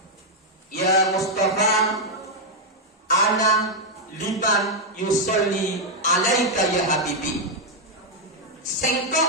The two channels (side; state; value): both; normal; correlation -0.01